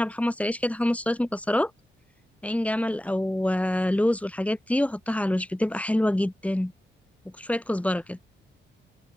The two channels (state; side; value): normal; both; correlation 0.95